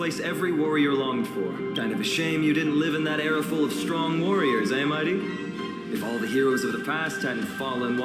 every warrior longed for. Kind of a shame you didn't live in that era full of strong warriors, eh, Mighty? If all the heroes of the past hadn't fallen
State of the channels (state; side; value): identical; both; correlation 1.00